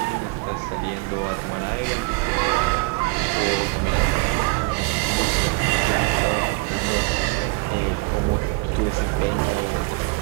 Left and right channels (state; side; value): quieter; left; 27.8 dB